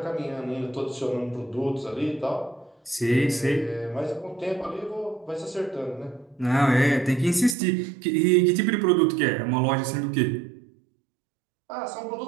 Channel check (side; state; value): left; drops out; at 7.6 s